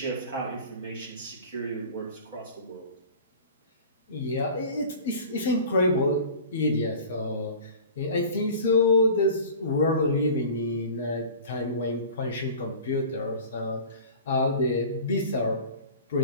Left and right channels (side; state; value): both; inverted; correlation -0.40